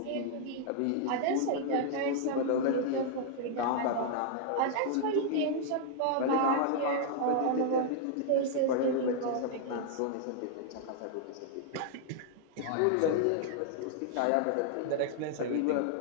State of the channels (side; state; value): both; different; correlation -0.01